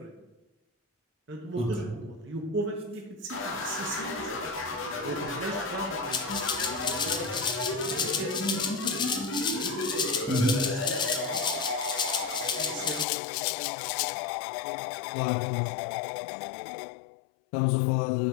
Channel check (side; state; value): right; drops out; at 13.1 s